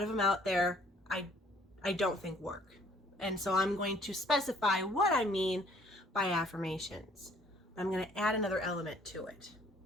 them out there, I don't think work. And so I'm going to specify what I mean by affirmations. I'm going to add another element to it.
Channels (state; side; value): normal; both; correlation 0.60